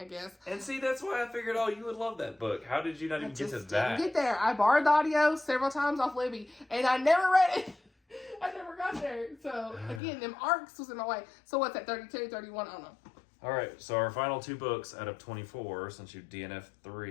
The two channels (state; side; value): drops out; right; at 10.0 s